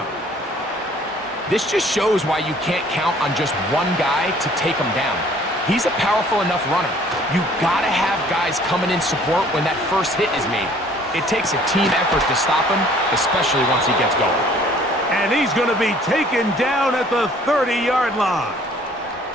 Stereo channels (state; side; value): normal; both; correlation 0.56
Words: This just shows why you can't count on just one guy to take him down. He's a powerful enough runner. You gotta have guys coming in support when that first hit is made. It takes a team effort to stop him, especially once he gets going. And he's going to be taken down at the 30-yard line.